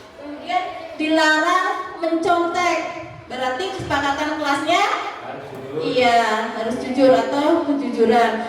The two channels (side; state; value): both; identical; correlation 1.00